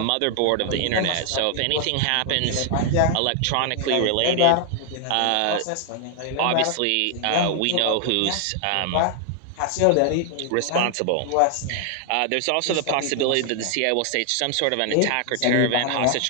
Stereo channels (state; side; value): different; both; correlation 0.00